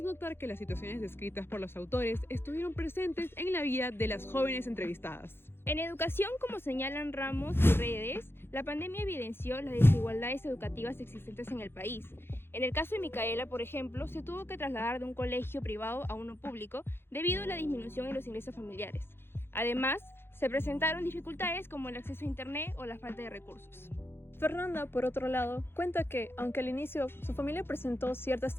notar que las situaciones descritas por los autores estuvieron presentes en la vida de las jóvenes entrevistadas. En educación, como señalan Ramos y Redes, la pandemia evidenció las desigualdades educativas existentes en el país. En el caso de Micaela, por ejemplo, se tuvo que trasladar de un colegio privado a uno público debido a la disminución en los ingresos familiares. Además, se presentaron dificultades como el acceso a internet o la falta de recursos. Fernanda, por otro lado, cuenta que, aunque al inicio su familia presentó cierta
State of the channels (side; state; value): right; late; 0.11 ms